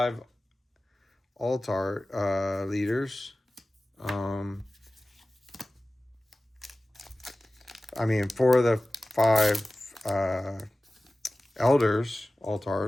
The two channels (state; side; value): normal; both; correlation 0.97